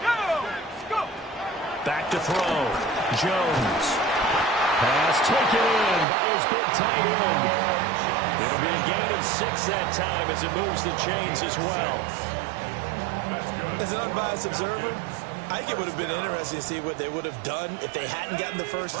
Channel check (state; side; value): drops out; left; at 6.1 s